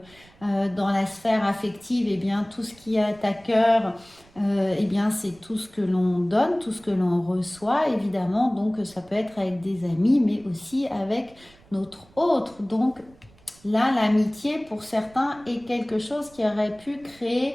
dans la sphère affective, tout ce qui est à cœur, c'est tout ce que l'on donne, tout ce que l'on reçoit, évidemment. Donc, ça peut être avec des amis, mais aussi avec notre autre. Donc, là, l'amitié, pour certains, est quelque chose qui aurait pu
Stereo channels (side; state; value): right; noise; rumble, 27 dB below the sound